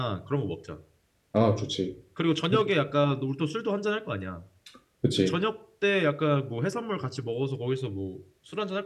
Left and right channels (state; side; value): identical; both; correlation 1.00